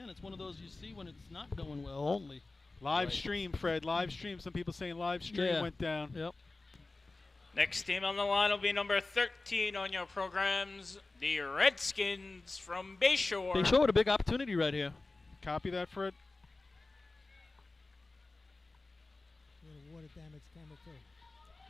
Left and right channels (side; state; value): right; quieter; 3.3 dB